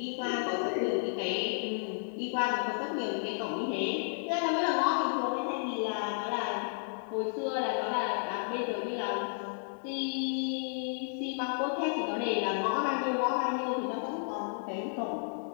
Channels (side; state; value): right; silent; 56 dB below the other